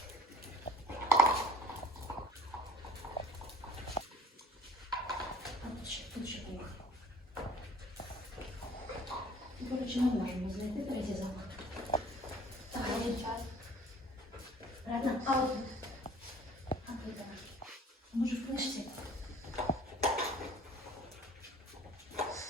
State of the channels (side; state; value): both; normal; correlation 0.51